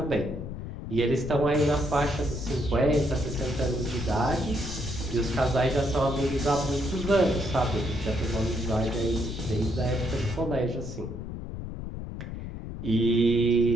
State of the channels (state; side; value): noise; left; rumble, 8 dB below the sound